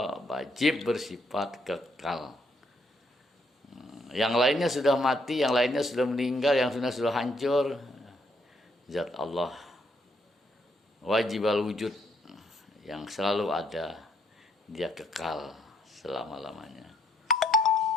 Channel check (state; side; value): normal; both; correlation 0.72